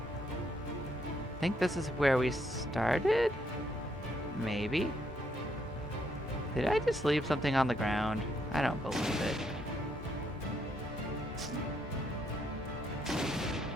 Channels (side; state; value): both; normal; correlation 0.74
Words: I think this is where we started? Maybe? Did I just leave something on the ground? I don't believe it.